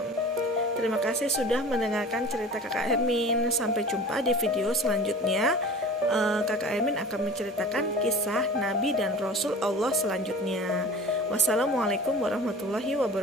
Terima kasih sudah mendengarkan cerita Kakak Hermin. Sampai jumpa di video selanjutnya. Kakak Hermin akan menceritakan kisah Nabi dan Rasul Allah selanjutnya. Wassalamualaikum warahmatullahi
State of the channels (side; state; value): both; normal; correlation 0.39